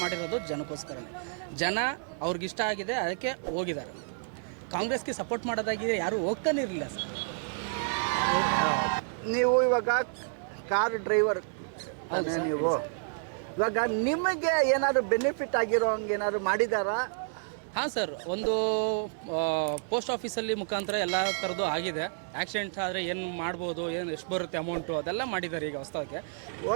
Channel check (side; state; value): left; silent; digital silence